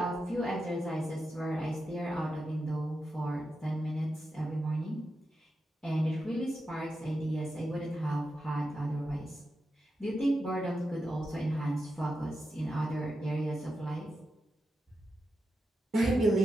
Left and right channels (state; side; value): normal; both; correlation 0.89